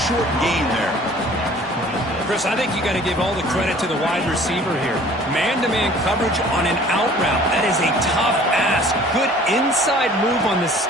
short gain there. Chris, I think you got to give all the credit to the wide receiver here. Man-to-man coverage on an out route. That is a tough ask. Good inside move on the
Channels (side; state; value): both; normal; correlation 0.51